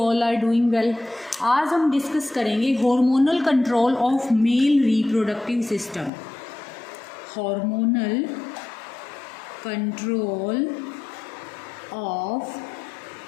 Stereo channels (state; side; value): drops out; right; at 6.1 s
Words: are doing well. आज हम discuss करेंगे hormonal control of male reproductive system. Hormonal control of